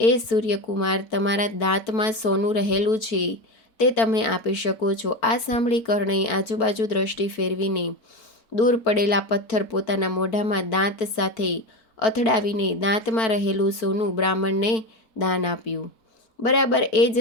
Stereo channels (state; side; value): late; right; 4.5 ms